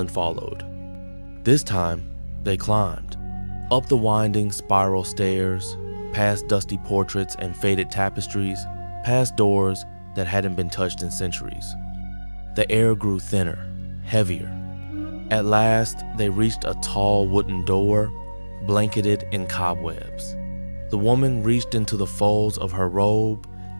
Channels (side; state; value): both; inverted; correlation -1.00